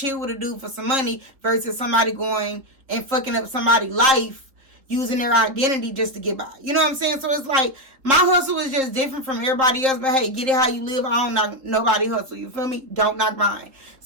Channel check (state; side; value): late; left; 3.7 ms